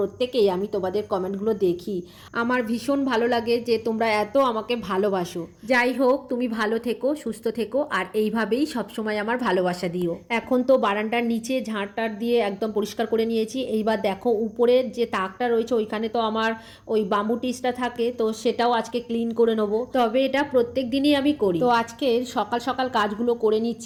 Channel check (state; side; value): identical; both; correlation 1.00